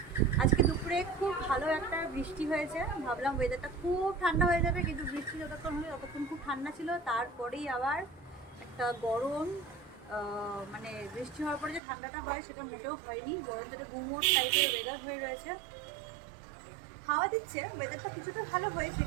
আজকে দুপুরে খুব ভালো একটা বৃষ্টি হয়েছে, ভাবলাম ওয়েদারটা খুব ঠান্ডা হয়ে যাবে, কিন্তু বৃষ্টি যতক্ষণ হলো ততক্ষণ খুব ঠান্ডা ছিল। তারপরেই আবার একটা গরম, মানে বৃষ্টি হওয়ার পরে যে ঠান্ডাটা হয় সেটা মোটেও হয়নি, গরম যেটা গুমোট টাইপের ওয়েদার হয়ে রয়েছে। হাওয়া দিচ্ছে, ওয়েদারটা কিছুটা ভালো হয়েছে,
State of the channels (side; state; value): left; drops out; at 11.8 s